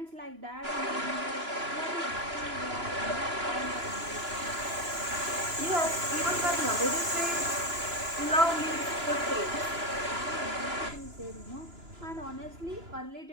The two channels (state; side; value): late; left; 2.9 ms